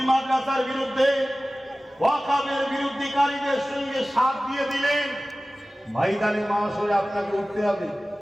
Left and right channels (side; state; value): both; normal; correlation 0.97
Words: মাদ্রাসার বিরুদ্ধে, ওয়াকফের বিরুদ্ধকারীদের সঙ্গে সাথ দিয়ে দিলেন, ময়দানে মাশরে আপনাকে উঠতে হবে,